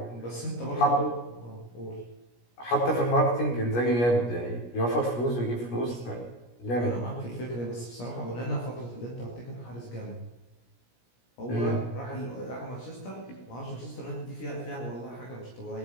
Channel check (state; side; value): late; right; 17 ms